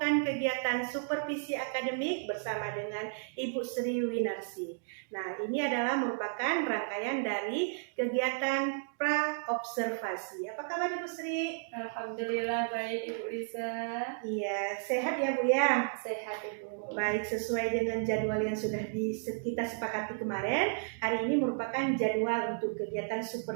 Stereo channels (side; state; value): left; silent; digital silence